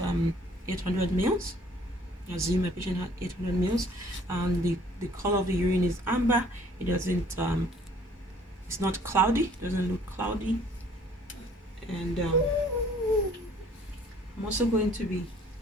800 mils. I assume my patient had 800 mils. The color of the urine is amber. It doesn't it's not cloudy. It doesn't look cloudy. And I'm also going to be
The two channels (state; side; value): normal; both; correlation 0.57